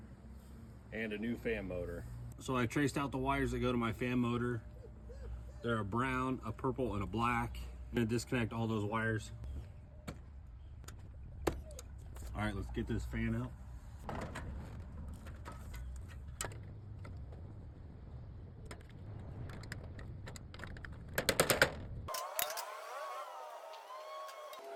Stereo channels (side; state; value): both; identical; correlation 1.00